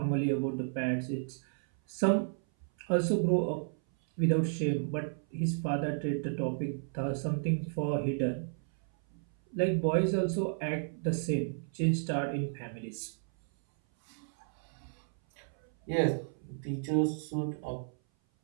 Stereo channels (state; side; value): silent; left; 56 dB below the other